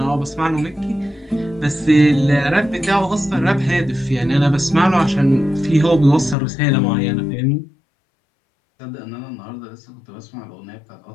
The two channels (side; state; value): right; drops out; at 6.4 s